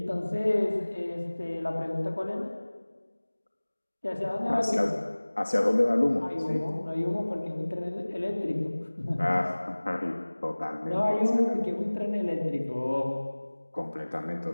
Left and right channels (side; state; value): both; inverted; correlation -1.00